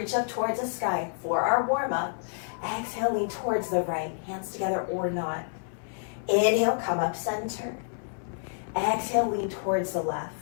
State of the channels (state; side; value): silent; right; 59 dB below the other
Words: up towards the sky for our warm-up. Exhale, lean towards the right, hands together or not. Inhale, come up center. Exhale, lean towards the